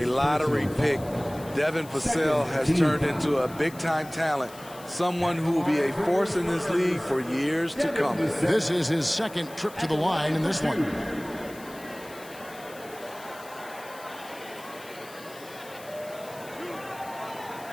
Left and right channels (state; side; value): noise; left; hiss, 20 dB below the sound